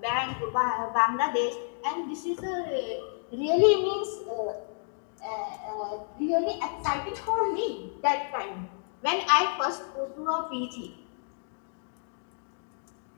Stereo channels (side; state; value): right; silent; digital silence